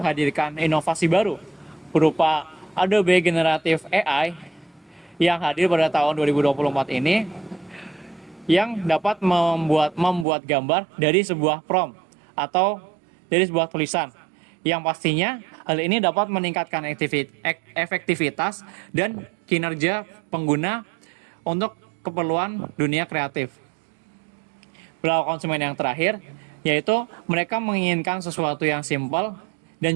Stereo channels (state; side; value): drops out; left; at 10.2 s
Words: inovasi baru berupa Adobe Generative AI yang hadir pada tahun 2024 ini, yang dapat membuat gambar dari sebuah prompt atau dari sebuah tulisan, yang pastinya hal ini dapat meningkatkan efektivitas dan kinerja pengguna untuk keperluan dunia kreatif. Perilaku konsumen yang terakhir yaitu mereka menginginkan sesuatu yang simpel dan